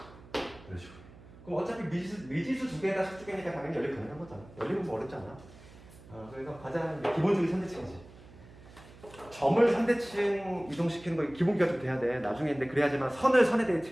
이런 식으로. 그럼 어차피 미지수 두 개에다 식두 개니까 당연히 연립 가능한 거잖아. 연립은 뭐 어렵지 않아. 그래서 가장 기본적인 선대칭이지. 점을 선대칭 이동시키는 거 기본기가 좀 돼야 돼. 나중에 근데 그래야지만 선을 선의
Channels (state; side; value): noise; right; hum, 20 dB below the sound